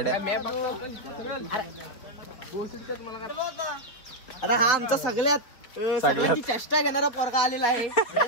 अरे हा आमचा सगळ्यात चेष्टा घेणारा पोरगा आलेला आहे.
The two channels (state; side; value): late; right; 4.1 ms